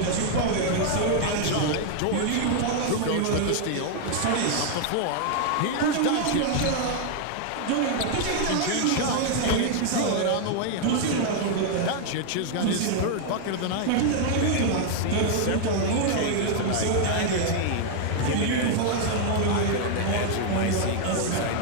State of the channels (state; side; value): different; both; correlation 0.00